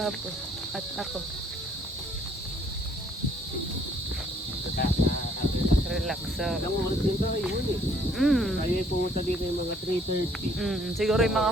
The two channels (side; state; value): both; normal; correlation 0.63